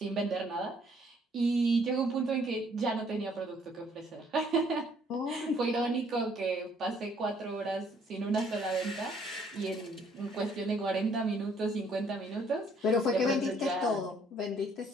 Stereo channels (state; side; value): normal; both; correlation 0.64